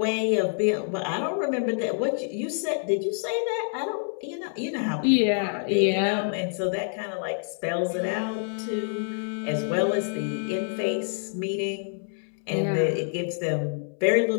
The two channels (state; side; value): silent; right; 60 dB below the other